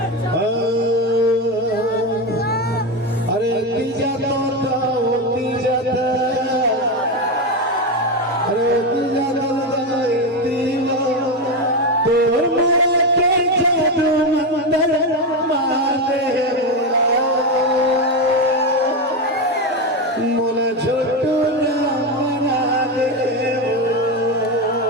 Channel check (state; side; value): normal; both; correlation 0.12